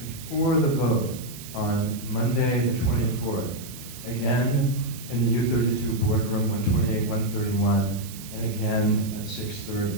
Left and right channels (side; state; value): right; noise; hiss, 14 dB below the sound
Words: the vote on Monday the 24th, again in the U32 boardroom, 128, 131, and again at